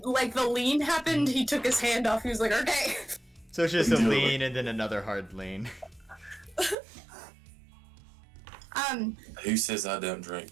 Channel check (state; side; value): drops out; left; at 6.8 s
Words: the lean happened, he took his hand off. He was like, okay. So it's just a lean and then another hard lean. Who says I don't drink?